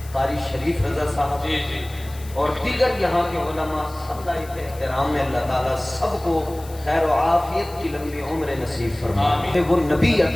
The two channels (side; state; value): left; noise; hiss, 20 dB below the sound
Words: قاری شریف رضا صاحب اور دیگر یہاں کے علماء، سب لائق احترام میں اللہ تعالیٰ سب کو خیر و عافیت کی لمبی عمر نصیب فرمائے۔ وہ نبی